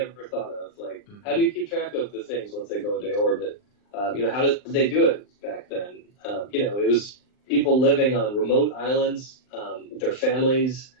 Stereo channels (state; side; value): late; right; 39 ms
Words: thought of. Like, how do you keep track of the things once they go into orbit? How did they do it back then? It was people living on remote islands with their families,